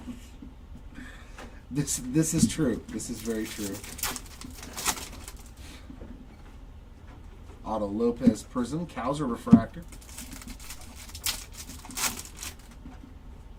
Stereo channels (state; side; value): identical; both; correlation 1.00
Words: This is true. This is very true. Otto Lopez Prism, Kowser refractor.